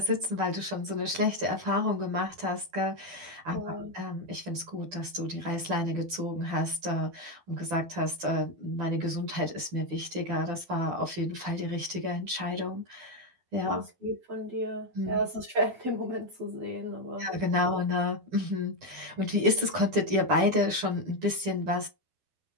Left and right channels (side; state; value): left; late; 12 ms